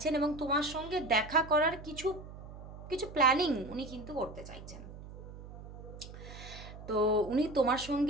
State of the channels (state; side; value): noise; right; hum, 14 dB below the sound